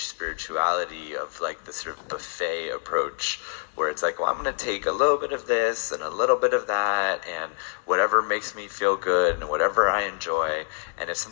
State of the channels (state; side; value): silent; right; digital silence